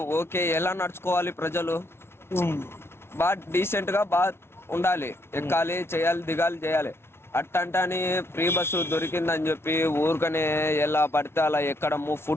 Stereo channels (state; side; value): late; right; 0.12 ms